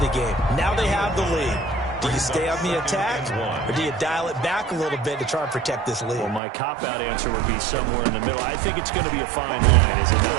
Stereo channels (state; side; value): drops out; left; at 6.4 s